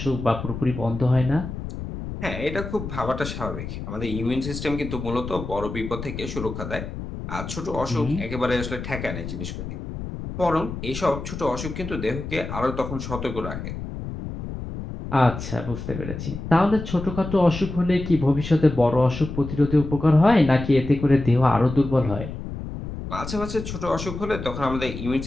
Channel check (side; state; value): left; noise; rumble, 8 dB below the sound